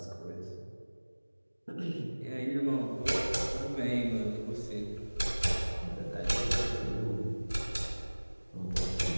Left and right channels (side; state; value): both; inverted; correlation -1.00